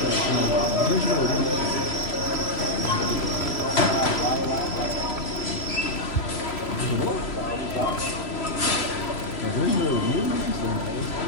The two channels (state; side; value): late; right; 3.0 ms